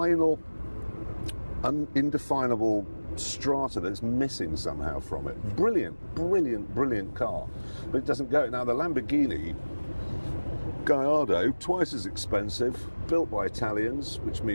indefinable strata that's missing somehow from it. Brilliant, brilliant, brilliant car, but it doesn't go. Now the Lamborghini Gallardo, twice as expensive, built by Italians, which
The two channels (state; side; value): inverted; both; correlation -1.00